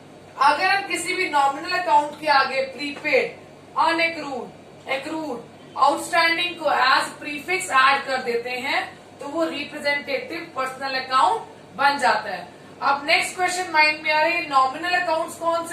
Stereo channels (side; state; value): both; identical; correlation 1.00